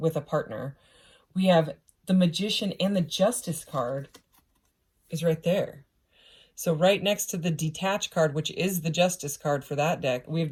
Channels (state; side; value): identical; both; correlation 1.00